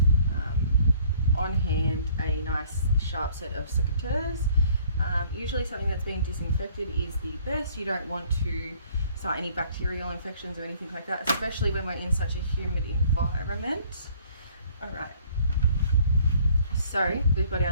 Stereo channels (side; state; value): both; inverted; correlation -0.58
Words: on hand a nice sharp set of secateurs. Usually something that's being disinfected is the best. You don't want to start any bacterial infections or anything like that, especially when we're in such a humid environment. All right, so we've got